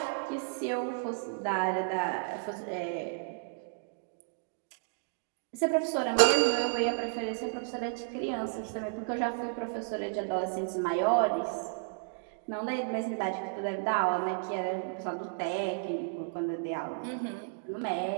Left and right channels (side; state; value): left; silent; digital silence